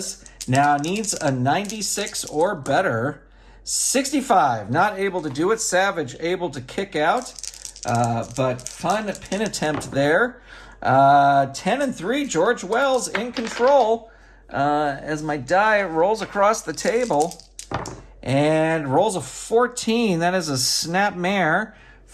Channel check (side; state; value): both; identical; correlation 1.00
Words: Now needs a 96 or better. 65, not able to do it. Savage able to kick out, but fun pin attempt there. 10 and 3, George Wells in control as my die rolls across the table and rolls a 14. That is a snap mare